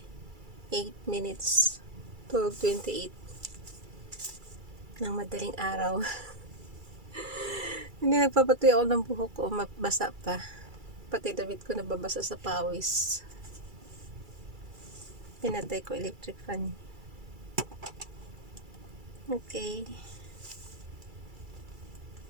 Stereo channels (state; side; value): late; left; 2.3 ms